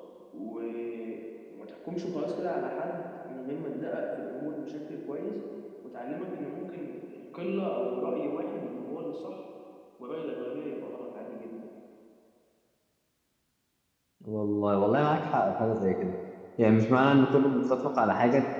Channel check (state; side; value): identical; both; correlation 1.00